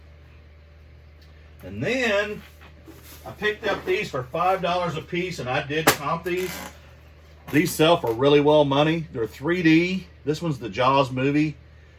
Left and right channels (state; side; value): identical; both; correlation 1.00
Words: And then I picked up these for $5 a piece, and I did comp these. These sell for really well money. They're 3D. This one's the Jaws movie,